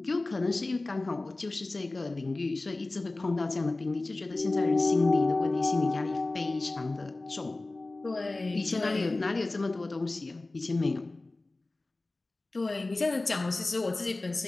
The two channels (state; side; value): quieter; right; 3.1 dB